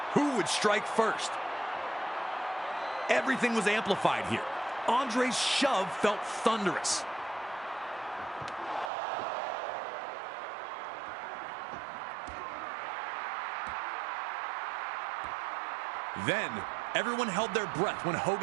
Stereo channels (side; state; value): left; drops out; at 8.9 s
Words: Who would strike first? Everything was amplified here. Andre's shove felt thunderous. Then, everyone held their breath when